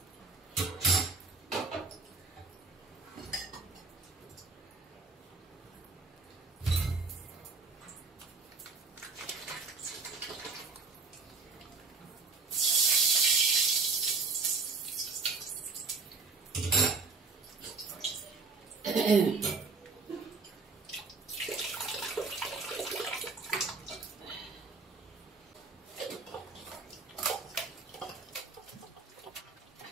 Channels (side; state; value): left; quieter; 4.4 dB